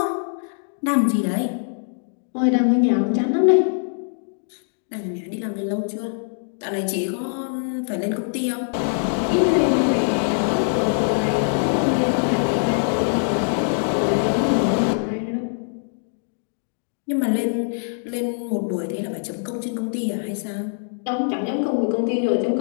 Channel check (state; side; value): silent; right; digital silence